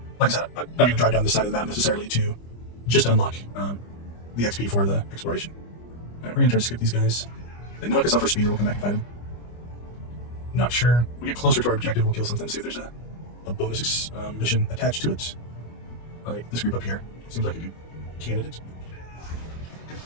like I said, I'm not going to drive down this side of the map necessarily to just unlock the XP for the exploration. All right, we're going to try to skip these guys. They knock us off our speed, or we'll come back and fight them. Not sure. When we get closer to our objective, we'll kill something, see if there's a bonus mission attached to it. Like this group up here. Seems like a good candidate.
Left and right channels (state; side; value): late; right; 25 ms